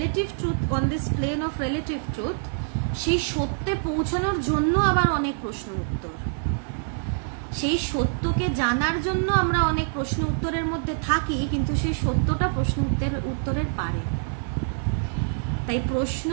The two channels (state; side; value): silent; left; 56 dB below the other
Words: truth, on this plane of relative truth, সেই সত্যে পৌঁছানোর জন্য আবার অনেক প্রশ্ন উত্তর, সেই সত্যকে জানার জন্য আমরা অনেক প্রশ্ন উত্তরের মধ্যে থাকি, কিন্তু সেই সত্যটা প্রশ্ন উত্তরের পারে। তাই প্রশ্ন